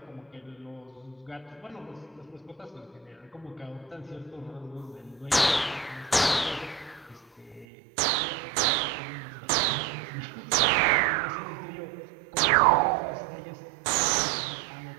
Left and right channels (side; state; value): left; drops out; at 7.7 s